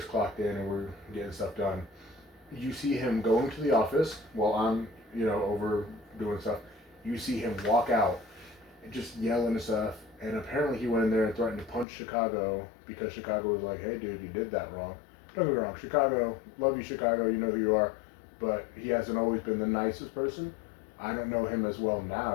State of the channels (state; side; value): drops out; right; at 11.9 s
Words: clocked in and we're getting stuff done. You see him going to the office while I'm, over doing stuff. You see him walk out and just yelling and stuff. And apparently he went in there and threatened to punch Chicago because Chicago was like, "Hey dude, you did that wrong." Don't get me wrong, Chicago, love you Chicago, you know who you are. But he hasn't always been the nicest person. I don't know him as well